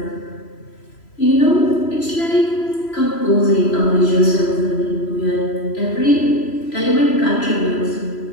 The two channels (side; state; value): right; late; 3.0 ms